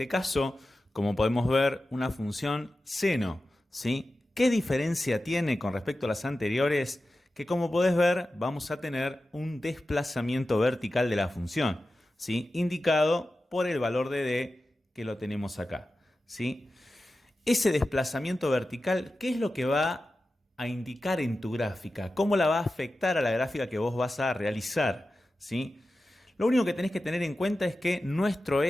caso, como podemos ver, una función seno, ¿sí? ¿Qué diferencia tiene con respecto a las anteriores? Que como podés ver, vamos a tener un desplazamiento vertical de la función, ¿sí? Indicado por el valor de d que lo tenemos acá, ¿sí? Ese desplazamiento vertical, ¿qué es lo que va a indicar en tu gráfica? ¿Cómo la va a afectar a la gráfica que vos vas a realizar? ¿Sí? Lo único que tenés que tener en cuenta es que nuestro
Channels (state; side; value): normal; both; correlation 0.93